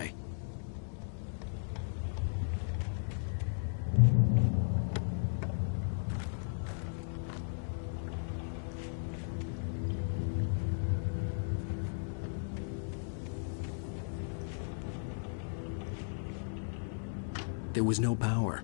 There was no power.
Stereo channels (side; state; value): right; silent; digital silence